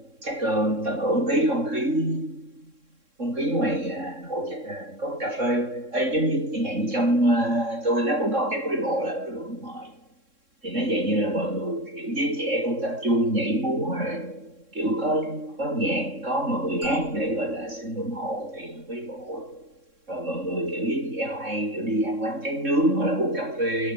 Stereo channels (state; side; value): late; left; 3.6 ms